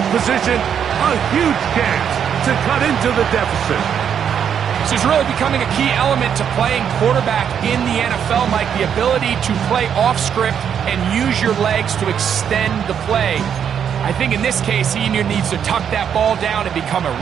position. A huge chance to cut into the deficit. This is really becoming a key element to playing quarterback in the NFL, Mike. The ability to play off script and use your legs to extend the play. I think in this case, he either needs to tuck that ball down and become a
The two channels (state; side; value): quieter; left; 8.2 dB